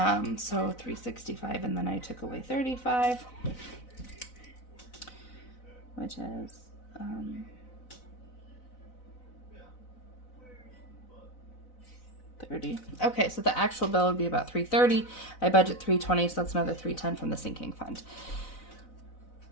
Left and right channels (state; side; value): late; right; 4.0 ms